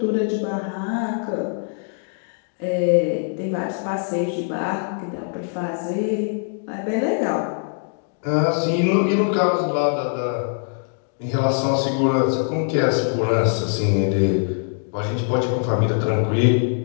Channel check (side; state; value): right; silent; 64 dB below the other